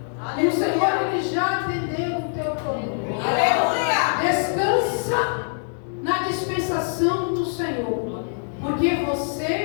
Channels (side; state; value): right; silent; digital silence